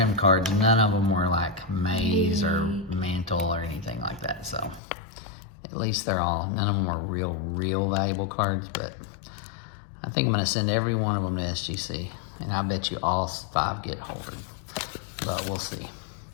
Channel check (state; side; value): drops out; right; at 4.8 s